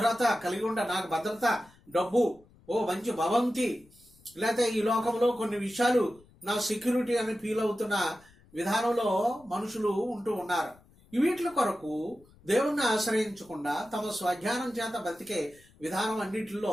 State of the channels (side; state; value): left; noise; rumble, 28 dB below the sound